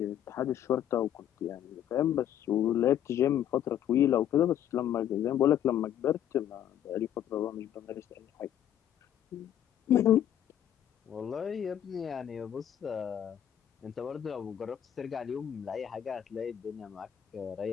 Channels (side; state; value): right; quieter; 10.5 dB